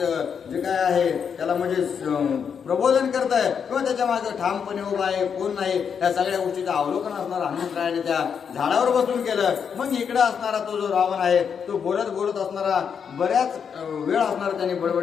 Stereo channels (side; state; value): right; quieter; 7.0 dB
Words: जे काय आहे त्याला म्हणजे प्रबोधन करत आहे किंवा त्याच्या मागे ठामपणे उभा आहे कोण नाही, या सगळ्या गोष्टीचं अवलोकन असणार हनुमंतरायाने त्या झाडावर बसून केलं. मग इकडे असणारा तो जो रावण आहे तो बोलत असणारा बऱ्याच वेळ असणार त्याने